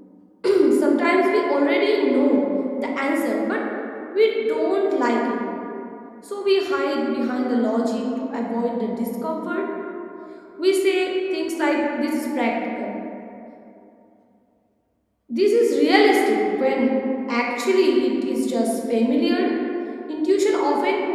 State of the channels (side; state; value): both; identical; correlation 1.00